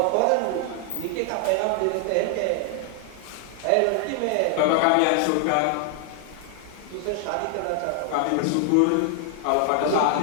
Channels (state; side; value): different; both; correlation 0.00